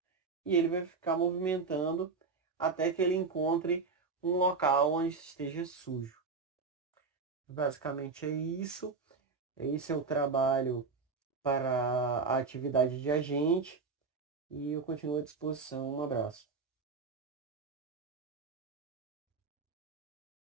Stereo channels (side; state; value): left; quieter; 4.6 dB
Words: E ele vai ficar movimentando até que ele encontre um local onde esteja sujo. Basicamente é isso. Esse é o trabalho para a atividade de agente. E eu continuo à disposição. Um abraço.